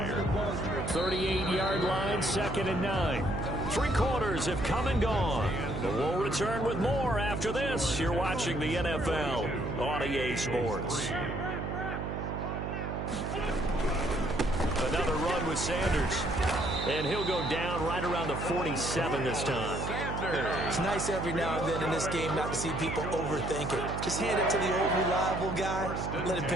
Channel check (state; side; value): noise; right; hum, 4 dB below the sound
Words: 38-yard line, 2nd and 9. 3 quarters have come and gone. But we'll return with more after this. You're watching the NFL on EA Sports. Another run with Sanders. And he'll go down right around the 47 this time. It's nice every now and then in this game not to see people overthink it. Just hand it to the old reliable guy. Let him